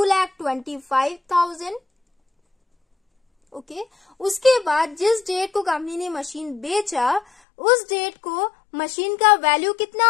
ओके, उसके बाद जिस डेट को कंपनी ने मशीन बेचा उस डेट को मशीन का वैल्यू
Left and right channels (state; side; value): drops out; right; at 7.2 s